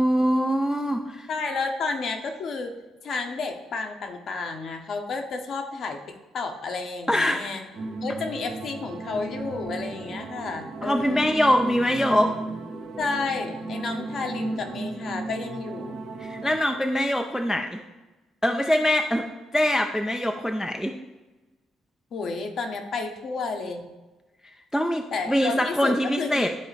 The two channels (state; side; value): normal; both; correlation 0.89